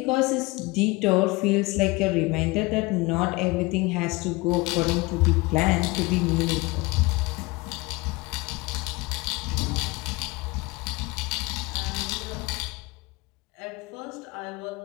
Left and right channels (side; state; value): right; quieter; 23.5 dB